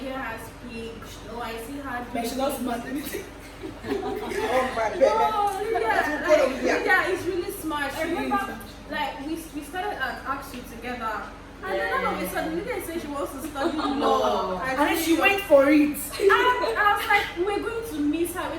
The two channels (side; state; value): both; identical; correlation 1.00